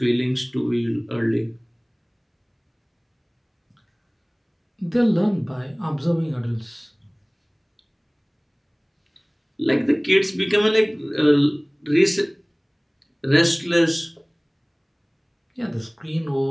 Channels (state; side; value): identical; both; correlation 1.00